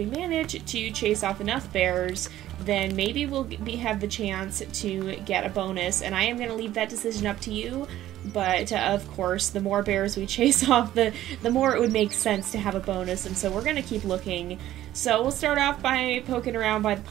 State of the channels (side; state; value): left; quieter; 13.5 dB